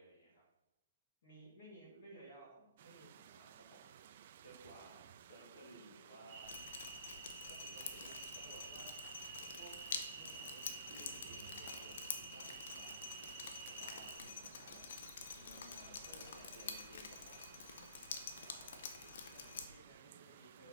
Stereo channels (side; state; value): both; inverted; correlation -0.56